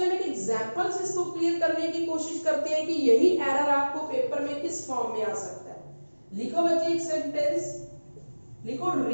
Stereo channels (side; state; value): both; inverted; correlation -1.00